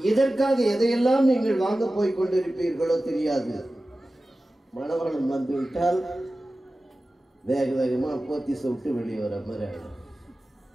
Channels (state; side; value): normal; both; correlation 0.95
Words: இதற்காக எதையெல்லாம் நீங்கள் வாங்க போய் கொண்டிருப்பீர்களோ தெரியாது. மணவாளன் வந்து விட்டால் வேக வேகமா போத்தி விட்டு வெளியே வர மாதிரி ஆயிடும்.